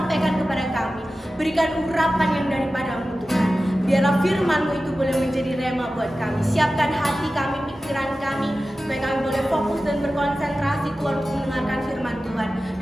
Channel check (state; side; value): normal; both; correlation 0.95